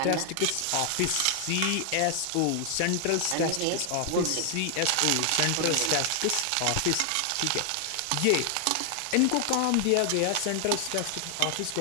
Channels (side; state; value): both; different; correlation 0.00